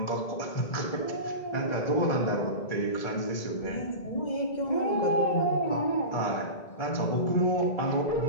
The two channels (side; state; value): right; late; 2.0 ms